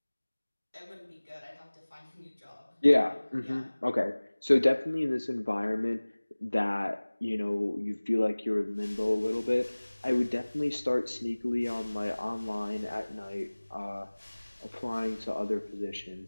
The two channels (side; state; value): both; inverted; correlation -1.00